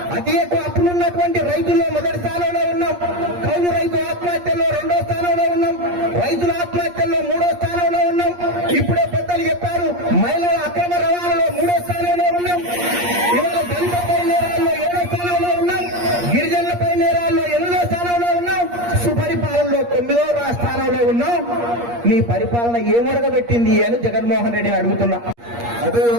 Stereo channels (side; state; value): left; late; 8.5 ms